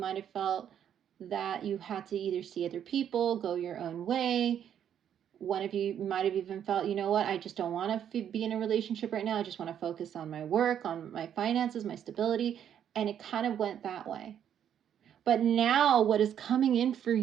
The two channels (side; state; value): left; quieter; 9.4 dB